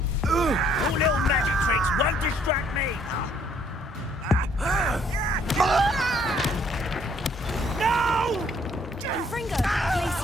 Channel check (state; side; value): normal; both; correlation 0.64